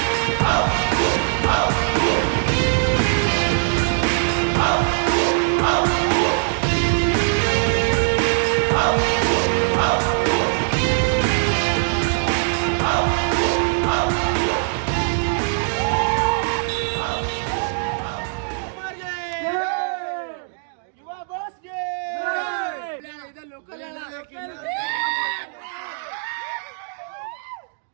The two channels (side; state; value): left; silent; digital silence